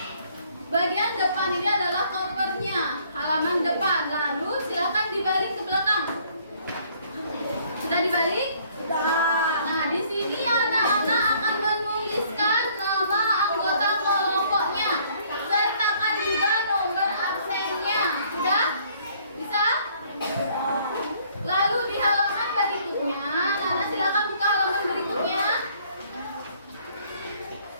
Bagian depan ini adalah kopernya, halaman depan. Lalu silakan dibalik ke belakang. Sudah dibalik? Nah, di sini anak-anak akan menuliskan nama anggota kelompoknya. Sertakan juga nomor absennya. Sudah? Bisa? Lalu di halaman berikutnya, Nana silakan buka halaman berikutnya.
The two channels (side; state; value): both; inverted; correlation -0.61